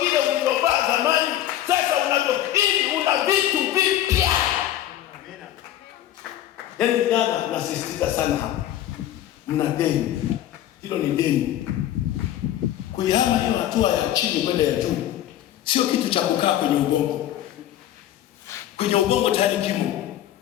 vile ulivyovaa zamani. Sasa ili una vitu vipya. Amina. Yaani jana nasisitiza sana hapa, mna deni. Hilo ni deni. Kuihama hiyo hatua ya chini kwenda ya juu sio kitu cha kukaa kwenye ubongo. Kwenye ubongo tayari kimo,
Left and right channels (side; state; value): right; quieter; 12.4 dB